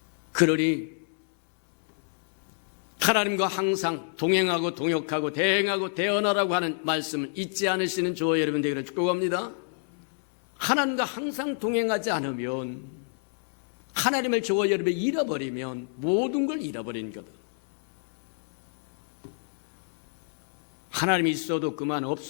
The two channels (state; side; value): silent; right; 60 dB below the other